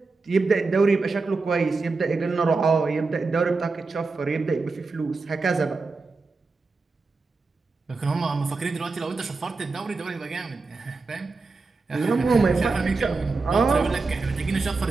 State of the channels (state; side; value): quieter; left; 4.0 dB